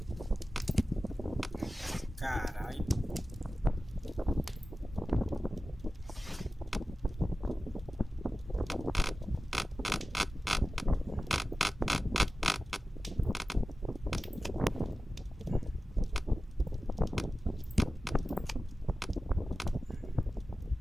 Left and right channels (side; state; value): both; normal; correlation 0.95